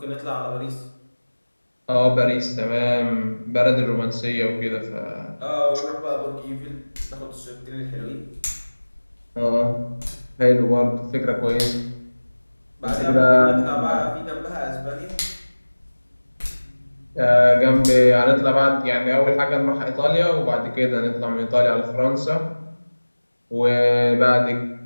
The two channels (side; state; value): both; inverted; correlation -1.00